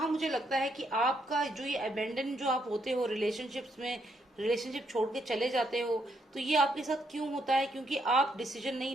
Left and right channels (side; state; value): both; normal; correlation 0.76